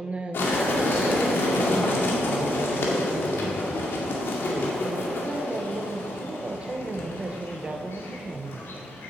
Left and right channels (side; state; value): both; normal; correlation 0.78